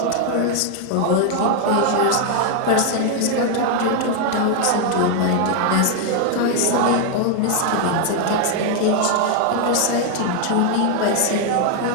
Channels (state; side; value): different; both; correlation 0.00